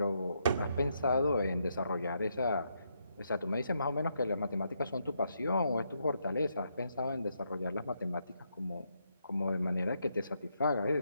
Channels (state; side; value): inverted; both; correlation -0.78